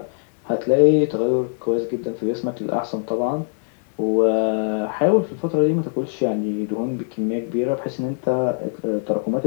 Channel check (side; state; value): right; silent; digital silence